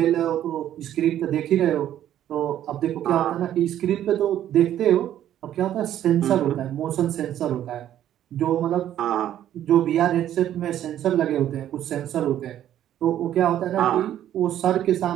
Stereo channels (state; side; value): quieter; left; 11.5 dB